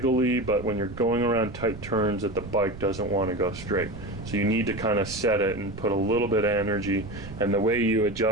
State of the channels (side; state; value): right; noise; rumble, 14 dB below the sound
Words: but when you're going around tight turns that the bike doesn't want to go straight. So you need to kind of set it and put a little bit of energy, and the way you